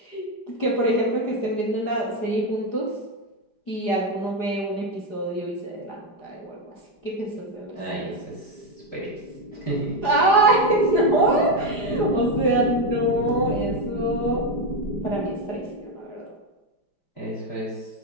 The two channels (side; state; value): right; late; 5.0 ms